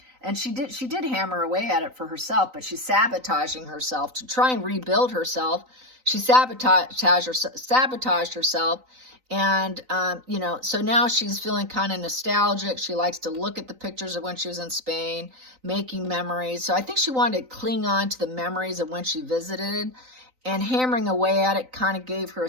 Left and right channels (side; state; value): left; late; 3.9 ms